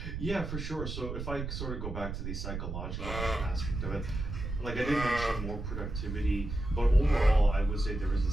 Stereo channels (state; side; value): noise; right; rumble, 5 dB below the sound